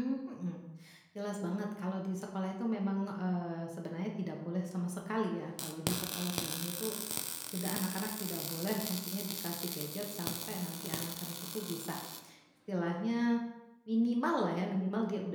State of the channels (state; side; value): identical; both; correlation 1.00